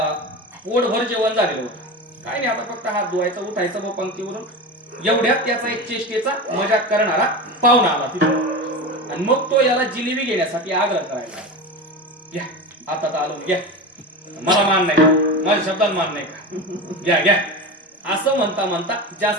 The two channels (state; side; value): normal; both; correlation 0.25